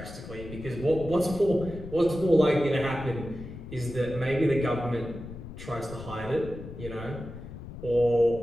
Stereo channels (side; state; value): left; noise; rumble, 12 dB below the sound